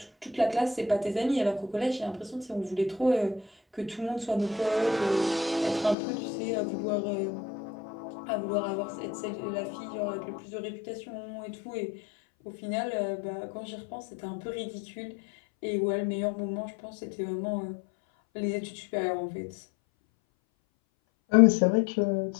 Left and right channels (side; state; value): right; drops out; at 6.0 s